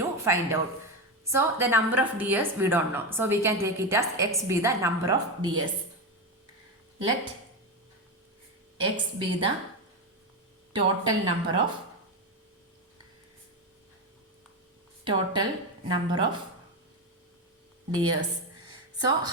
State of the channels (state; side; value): normal; both; correlation 0.14